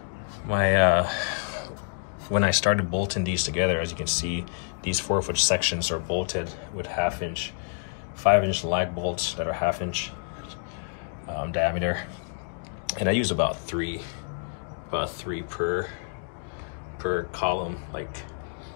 when I started bolting these together, as you can see, these 4-foot sections are bolted with 1/2-inch, 5-inch lag bolts that are 1/2 inch diameter, and I use about three per column, like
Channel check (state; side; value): silent; right; digital silence